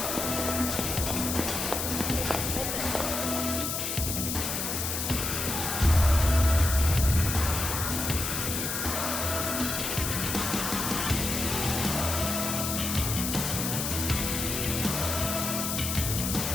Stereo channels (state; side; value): noise; left; hiss, 2 dB below the sound